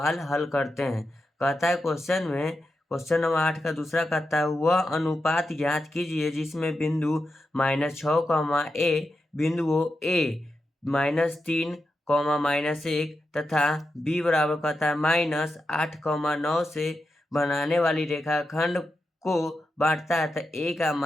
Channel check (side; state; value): both; normal; correlation 0.88